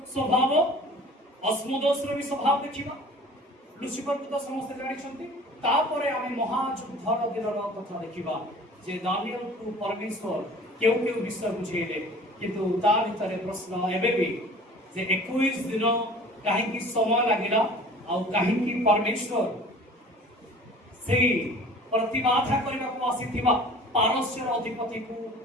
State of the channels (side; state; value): both; normal; correlation 0.45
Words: ସ୍ୱଭାବ ଅସ୍ମୋଦୋସର ବି ସ୍ୱଭାବ ଦେଖିବା ଲୁସିଫରକୁ ତ ସମସ୍ତେ ଜାଣିଛନ୍ତି ତାପରେ ଆମେ ମହାଯୁଦ୍ଧର ଦିନର କଥା ଦେଖିବା ଯେ ଦାନିଏଲକୁ ପରମେଶ୍ୱର କେଉଁ କେଉଁ ବିଷୟ ବୁଝେଇଲେ କିନ୍ତୁ ତା ଭିତରେ ପ୍ରଶ୍ନ ଏବେ ବି ଯେ 21 ଦିନ କାହିଁକି ସମୟ ଲାଗିଲା ଆଉ କାହିଁକି ପରମେଶ୍ୱର ସେଇ ପ୍ରତିବାଧା କରିବାକୁ ଆସିଥିବା ପାରସ୍ୟର ଅଧିପତିକୁ